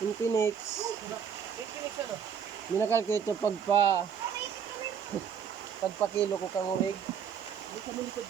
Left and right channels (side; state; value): left; quieter; 7.6 dB